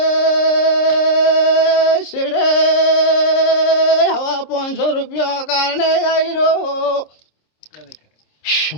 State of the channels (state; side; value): late; right; 26 ms